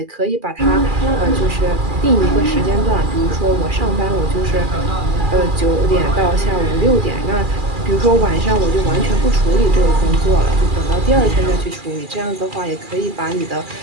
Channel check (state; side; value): late; left; 2.4 ms